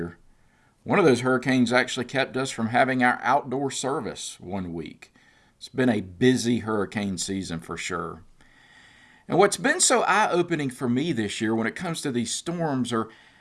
One of those hurricanes actually kept us from having our outdoor service one week. It's been a busy hurricane season for sure. And what's been so eye-opening for me this year when it comes to these storms are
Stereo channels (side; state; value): both; identical; correlation 1.00